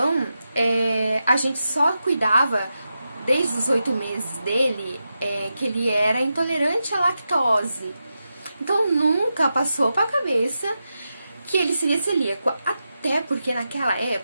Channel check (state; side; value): inverted; both; correlation -0.89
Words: a gente só cuidava desde os 8 meses dele, que ele era intolerante à lactose. Então nunca passou pra cabeça que ele seria celíaco. Até porque naquela